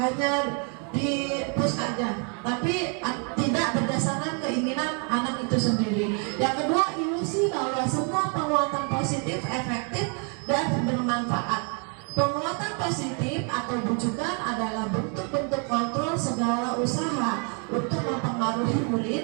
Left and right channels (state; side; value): quieter; left; 38.3 dB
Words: di-push aja, tapi tidak berdasarkan keinginan anak itu sendiri. Yang kedua, ilusi bahwa semua penguatan positif efektif dan bermanfaat. Penguatan positif atau bujukan adalah bentuk-bentuk kontrol segala usaha untuk mempengaruhi